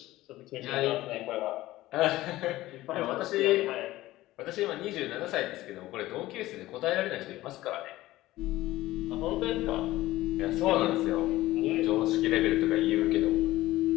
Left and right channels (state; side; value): quieter; right; 16.7 dB